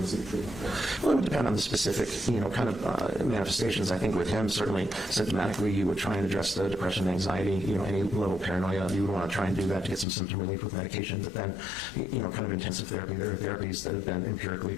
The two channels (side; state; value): right; drops out; at 10.1 s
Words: seek treatment? Well, it would depend on the specific, kind of manifestations. I think with him, certainly symptomatically, you would try and address the depression, anxiety, any level of paranoia. You would want to try and do that to get some symptom relief with medication. But then, kind of intensive therapy. There are therapies that have been empirically